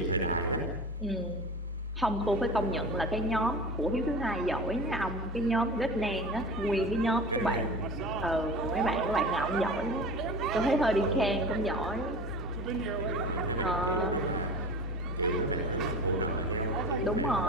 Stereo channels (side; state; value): both; normal; correlation 0.34